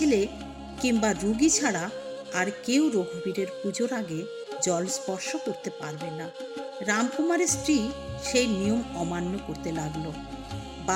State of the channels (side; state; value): both; identical; correlation 1.00